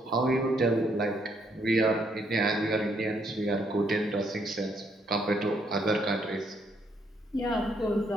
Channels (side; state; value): both; normal; correlation 0.72